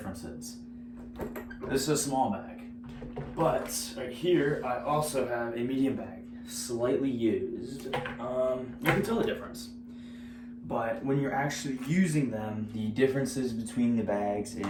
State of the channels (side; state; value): both; identical; correlation 1.00